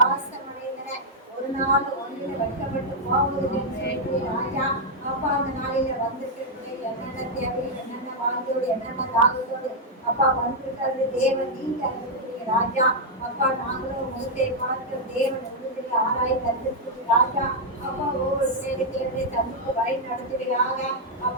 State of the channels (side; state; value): both; normal; correlation -0.03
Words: அடைந்தன. ஒரு நாள் ஒன்றில் வைக்கப்பட்டு போவதில்லை ராஜா. அப்பா அந்த நாளில வந்திருக்கிற என்னென்ன தேவை, என்னென்ன வாழ்க்கையோடு, என்னென்ன தாகத்தோடு அப்பா வந்திருக்கிறது தேவன் நீங்க அறிவிக்கிறீங்க ராஜா. அப்பா நாங்களும் முகத்தை பார்க்கிற தேவன் உறுதியை ஆராய் தந்திருக்கிறது ராஜா. அப்பா ஒவ்வொரு சேவைகளை தந்திக்கு வழி நடத்துவீராக.